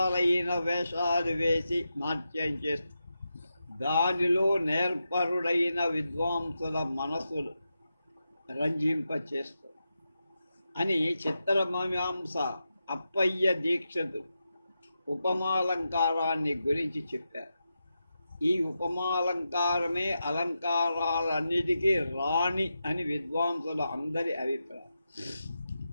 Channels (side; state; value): both; inverted; correlation -0.88